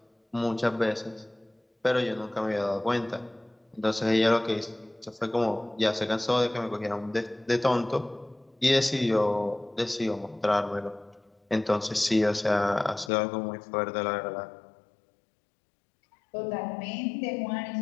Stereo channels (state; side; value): drops out; right; at 13.1 s